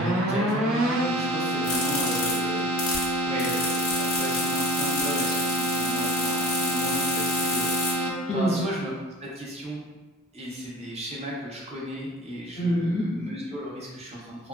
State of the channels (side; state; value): both; normal; correlation 0.40